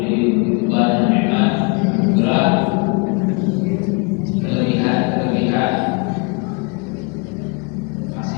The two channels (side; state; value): right; quieter; 31.3 dB